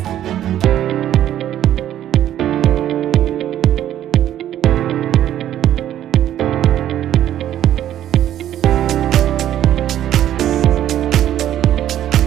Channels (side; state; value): left; quieter; 11.6 dB